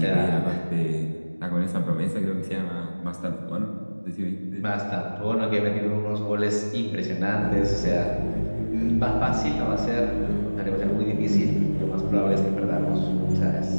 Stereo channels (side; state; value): both; inverted; correlation -1.00